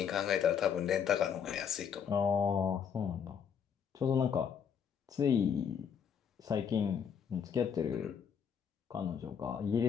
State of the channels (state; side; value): quieter; right; 7.5 dB